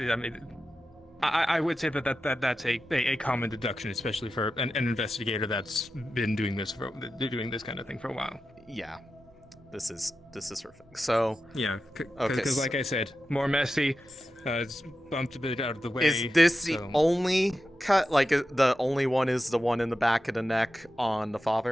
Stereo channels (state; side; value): normal; both; correlation 0.91